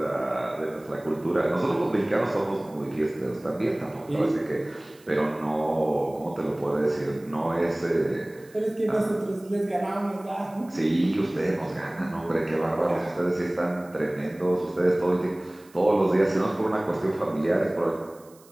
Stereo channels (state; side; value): noise; right; hiss, 27 dB below the sound